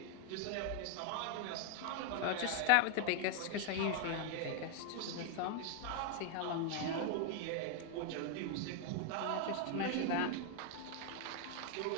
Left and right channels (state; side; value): different; both; correlation 0.00